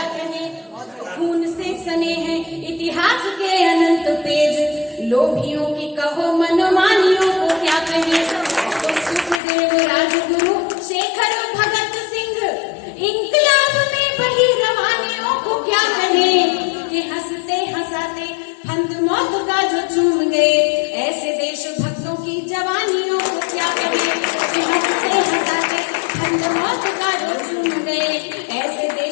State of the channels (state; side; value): drops out; right; at 9.4 s